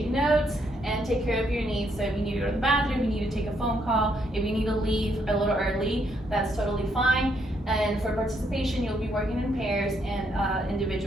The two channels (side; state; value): both; normal; correlation 0.74